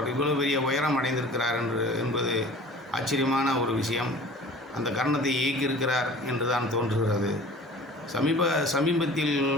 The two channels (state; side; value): normal; both; correlation 0.44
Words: இவ்வளவு பெரிய உயரம் அடைந்திருக்கிறார் என்பது ஆச்சரியமான ஒரு விஷயம். அந்த கர்ணத்தை இயக்கியிருக்கிறார் என்று தான் தோன்றுகிறது. சமீபத்தில்